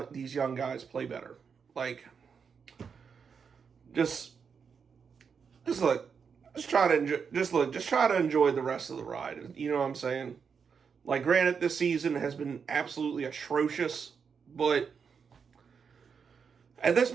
these young guys play better. Just try to enjoy the rest of the ride. You know what I'm saying? Granted, this season has been absolutely atrocious, but at this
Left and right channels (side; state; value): left; quieter; 6.2 dB